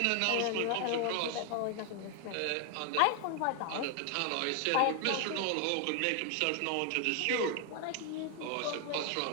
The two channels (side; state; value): both; different; correlation 0.00